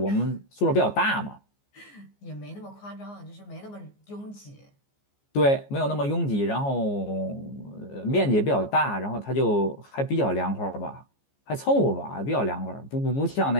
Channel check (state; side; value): late; right; 14 ms